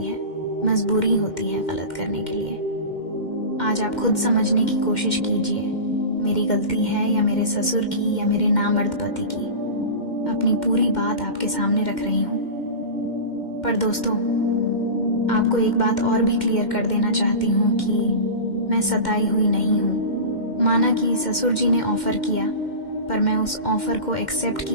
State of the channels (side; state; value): right; late; 2.1 ms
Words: है, मजबूरी होती है गलत करने के लिए। आज आप खुद समझने की कोशिश कीजिए, मेरी गलती है या मेरे ससुर की या मेरे नामर्द पति की। अपनी पूरी बात आपके सामने रख रही हूं। पर दोस्तों, आपको एक बात और भी क्लियर कर देना चाहती हूं कि मैं सताई हुई नहीं हूं। माना कि ससुर जी ने ऑफर किया, पर मैं उस ऑफर को एक्सेप्ट